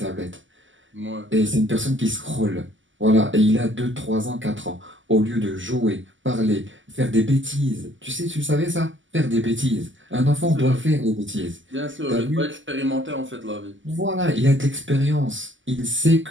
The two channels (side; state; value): left; late; 0.55 ms